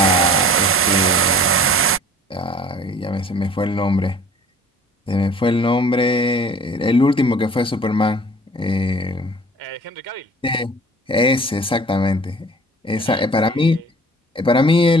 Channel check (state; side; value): normal; both; correlation 0.48